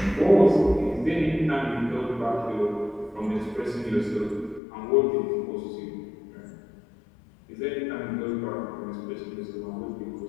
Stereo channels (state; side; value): drops out; right; at 4.6 s